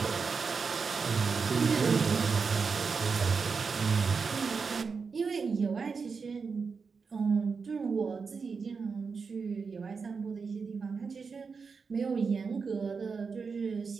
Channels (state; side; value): quieter; left; 5.2 dB